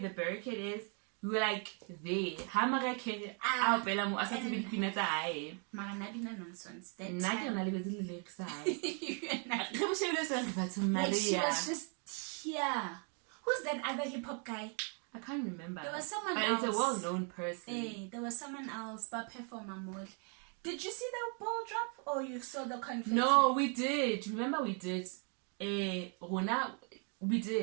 barricade is. We were like there. Nonsense. That she was just here. Who's that other hip hop guy? I can't remember. There was someone but else. It's a well-known person. Hey, there was someone else, but performer mode. Did you see the ball drop or you saw the confetti? No, we did. Remember we did. Rona, we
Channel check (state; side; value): quieter; left; 39.8 dB